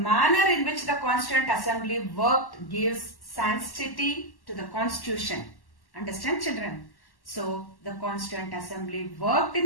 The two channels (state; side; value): late; right; 1.1 ms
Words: in which the Constituent Assembly worked gives sanctity to the Constitution. Understand, children? So, the Constituent Assembly worked